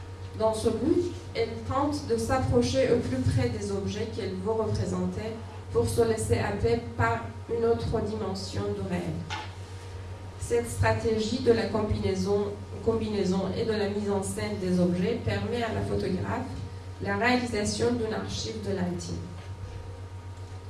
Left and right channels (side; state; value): both; identical; correlation 1.00